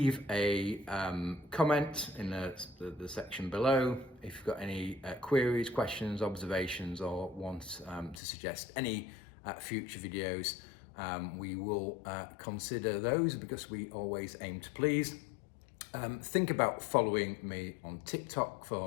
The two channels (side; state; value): right; drops out; at 8.2 s